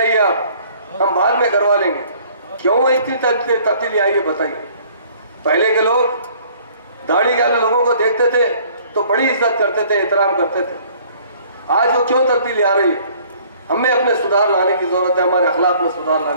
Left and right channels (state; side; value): inverted; both; correlation -0.56